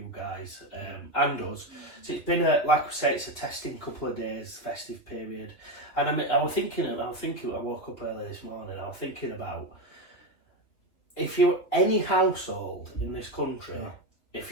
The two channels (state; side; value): late; right; 3.1 ms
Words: guys and us. So it's been like we say, it's a testing couple of days, festive period. And I woke up early this morning, I was thinking about if you're any household in this country, if